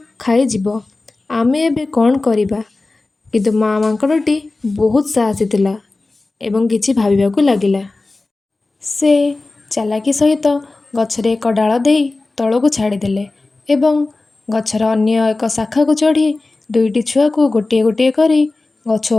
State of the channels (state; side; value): quieter; right; 3.3 dB